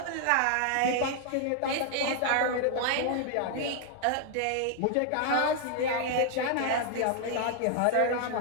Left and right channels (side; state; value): both; different; correlation 0.00